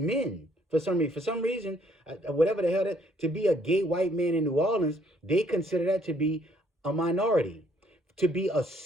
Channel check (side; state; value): both; normal; correlation 0.65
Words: For some reason, whatever the hell to be a gay white man in New Orleans, they consider that to be a minority. To be a